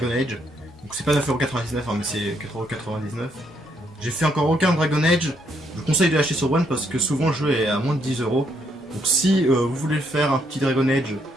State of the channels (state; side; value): normal; both; correlation 0.73